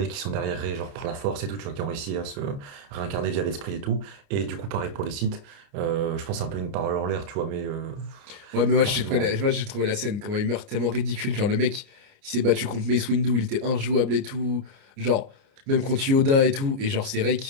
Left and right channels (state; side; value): late; left; 29 ms